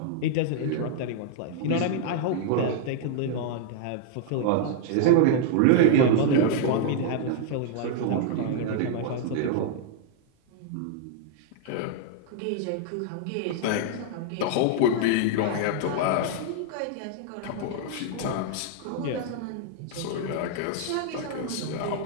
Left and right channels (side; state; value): both; different; correlation 0.00